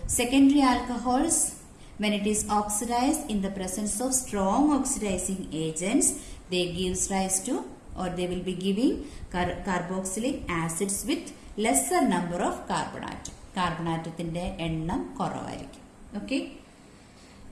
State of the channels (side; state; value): both; identical; correlation 1.00